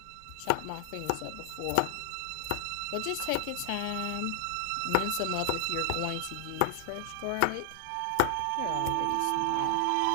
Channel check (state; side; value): different; both; correlation -0.01